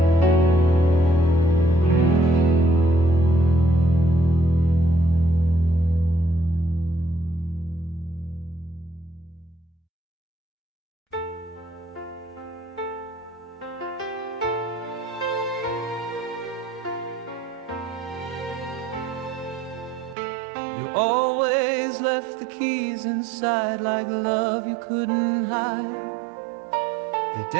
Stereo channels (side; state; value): left; drops out; at 20.2 s